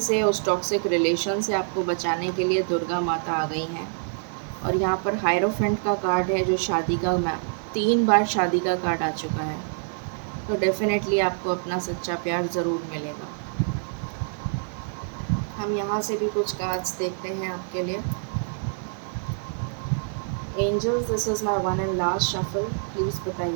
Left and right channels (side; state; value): left; silent; digital silence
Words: उस टॉक्सिक रिलेशन से आपको बचाने के लिए दुर्गा माता आ गई हैं। और यहाँ पर हायरोफेंट का कार्ड है जो शादी का 3 बार शादी का कार्ड आ चुका है। तो डेफिनेटली आपको अपना सच्चा प्यार ज़रूर मिलेगा। हम यहाँ से भी कुछ कार्ड्स देखते हैं आपके लिए। Angels, this is my one and last shuffle. Please